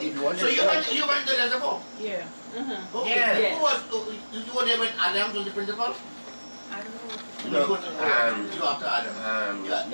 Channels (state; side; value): inverted; both; correlation -1.00